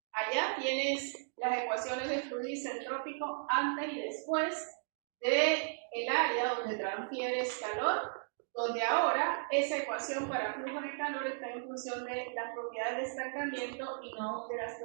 Allá tienes las ecuaciones de fluido isentrópico antes y después del área donde transfieres calor, donde ahora esa ecuación para flujo de calor está en función de las propiedades de estancamiento y no de las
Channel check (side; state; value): left; silent; digital silence